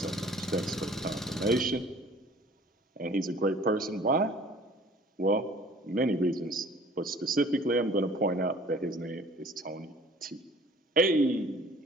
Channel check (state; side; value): normal; both; correlation 0.51